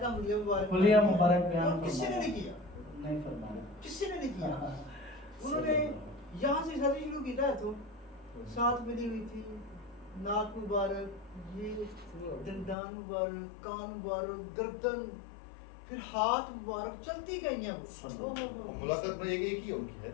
کا حلیہ مبارک بیان کسی نے نہیں کیا، نہیں فرمایا، کسی نے نہیں کیا. انہوں نے یہاں سے شادی شروع کی تھا، تو ساتھ ملی ہوئی تھی، ناک مبارک، یہ دندان مبارک، کان مبارک، گردن، پھر ہاتھ مبارک، چلتی گئی ہیں وہ. ملاقات میں ایک ہی ان کی ہے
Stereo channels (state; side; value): drops out; right; at 12.8 s